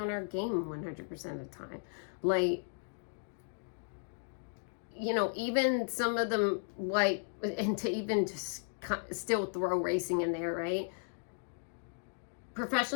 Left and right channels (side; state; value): right; silent; digital silence